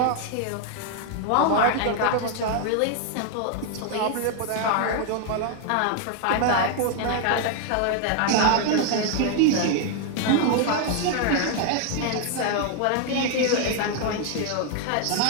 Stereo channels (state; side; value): different; both; correlation 0.00